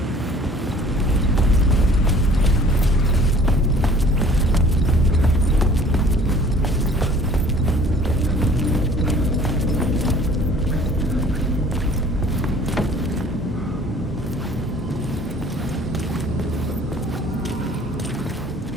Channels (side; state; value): both; normal; correlation 0.51